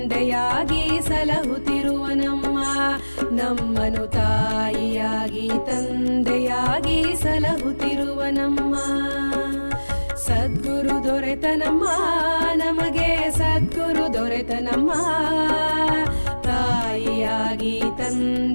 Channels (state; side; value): inverted; both; correlation -1.00